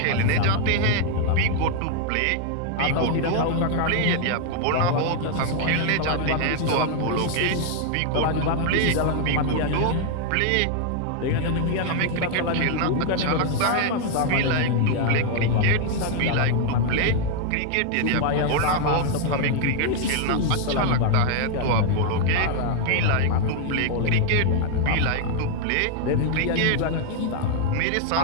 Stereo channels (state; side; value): different; both; correlation 0.00